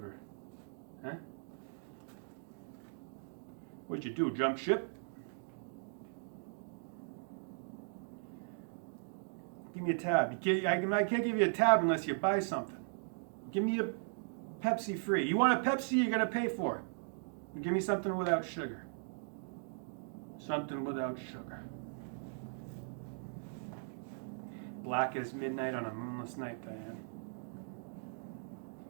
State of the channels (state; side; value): silent; left; digital silence